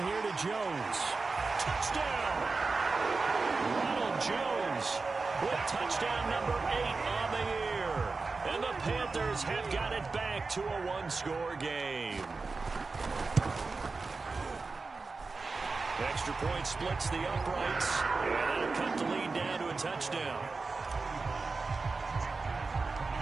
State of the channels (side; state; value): left; quieter; 4.0 dB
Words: here to Jones. Touchdown! Ronald Jones with touchdown number 8 on the year. And the Panthers have got it back to a one-score game. Extra point splits the uprights, and that'll cut the lead down to a touchdown.